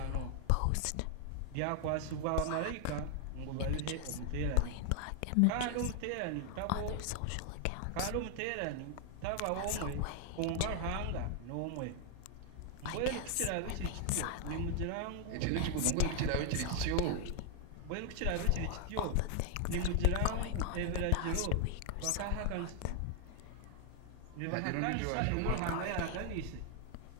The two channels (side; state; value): both; different; correlation 0.00